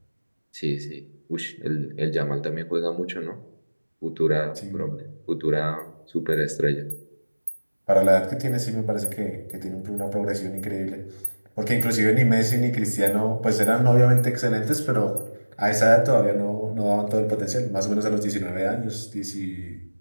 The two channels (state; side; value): inverted; both; correlation -1.00